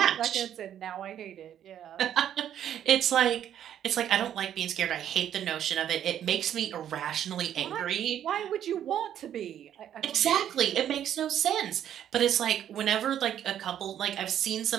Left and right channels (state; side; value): quieter; left; 10.3 dB